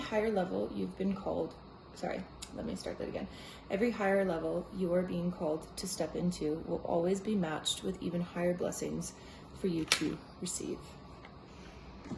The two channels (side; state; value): both; identical; correlation 1.00